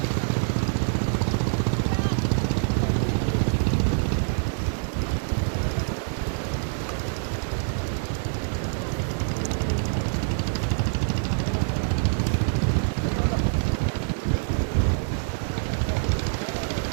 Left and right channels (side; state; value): left; silent; digital silence